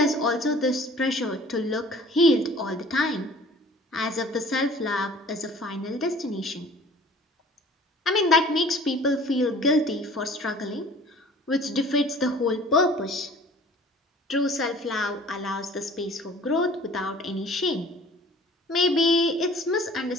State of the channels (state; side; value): normal; both; correlation 0.49